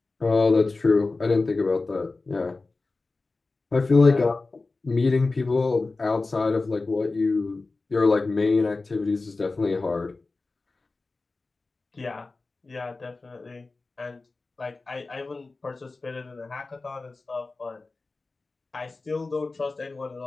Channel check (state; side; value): quieter; right; 3.6 dB